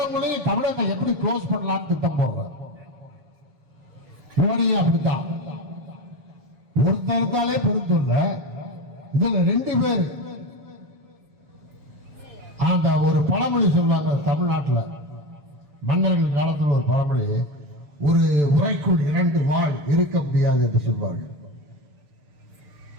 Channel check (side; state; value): left; late; 6.8 ms